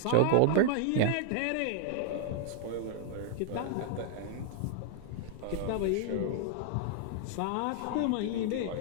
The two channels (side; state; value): both; different; correlation 0.00